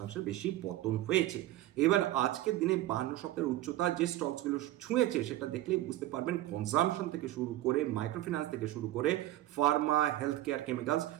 বেশি পতন হয়েছে। এবার আজকের দিনে 52 সপ্তাহের উচ্চতা যে স্টকসগুলো ছুঁয়েছে সেটা দেখলেই বুঝতে পারবেন, কনজামশন থেকে শুরু করে মাইক্রো ফিন্যান্স থেকে শুরু করে ফার্মা, হেলথ কেয়ার, কেমিক্যালস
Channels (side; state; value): left; quieter; 15.0 dB